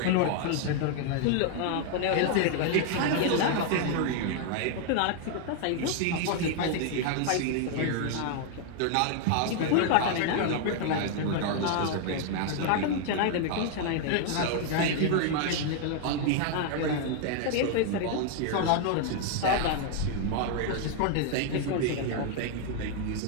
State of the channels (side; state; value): both; different; correlation 0.00